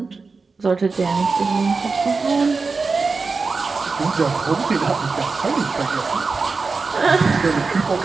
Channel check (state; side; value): quieter; left; 4.3 dB